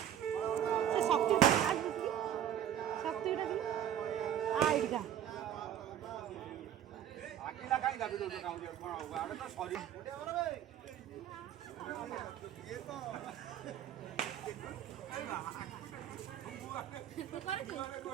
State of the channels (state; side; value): quieter; left; 10.7 dB